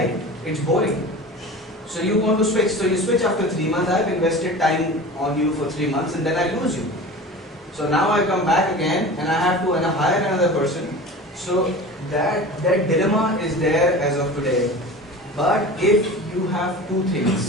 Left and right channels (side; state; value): both; normal; correlation 0.36